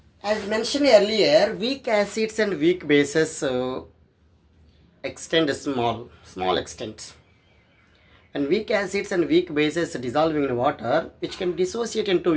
as mentioned earlier, weak acids and weak bases extend small extent. And weak acids and weak bases dissolving in water, which can dissociate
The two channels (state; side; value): identical; both; correlation 1.00